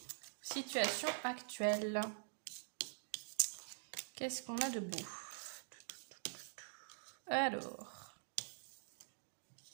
Situation actuelle. Qu'est-ce qu'on a de beau? Alors...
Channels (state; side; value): silent; left; digital silence